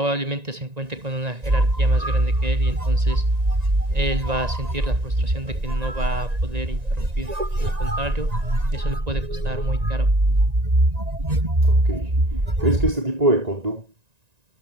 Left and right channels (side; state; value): left; late; 1.9 ms